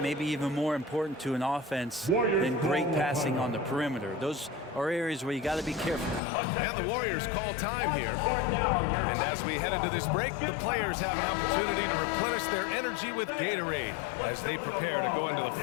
may be even more important to an offense than great passing on the perimeter. Those are areas where you got to be careful. And the Warriors call time here. And as we head into this break, the players have an opportunity to replenish their energy with Gatorade as they prepare to go into the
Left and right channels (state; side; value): drops out; right; at 6.2 s